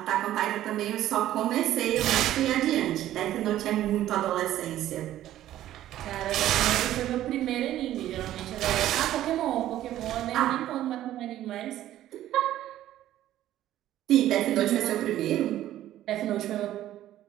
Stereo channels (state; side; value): quieter; left; 13.1 dB